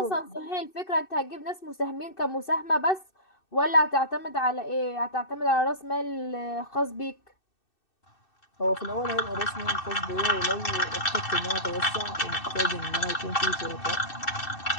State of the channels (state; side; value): late; right; 2.6 ms